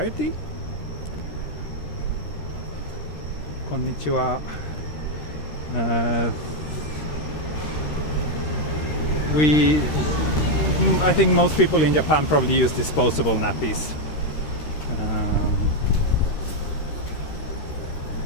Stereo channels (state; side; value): late; right; 13 ms